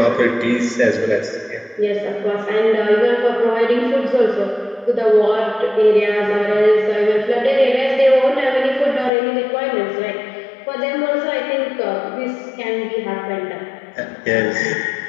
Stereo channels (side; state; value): right; drops out; at 9.1 s